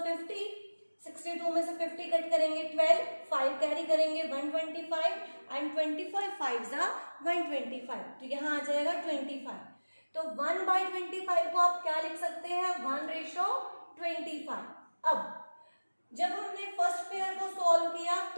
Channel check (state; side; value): inverted; both; correlation -1.00